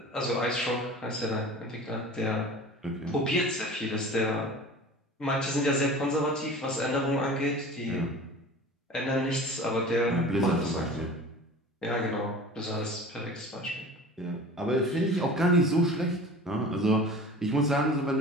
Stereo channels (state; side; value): normal; both; correlation 0.39